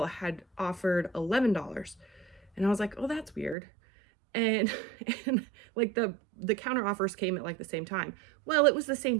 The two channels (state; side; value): drops out; left; at 3.6 s